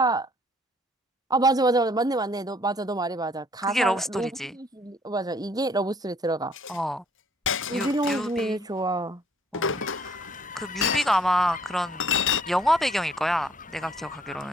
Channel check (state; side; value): normal; both; correlation 0.61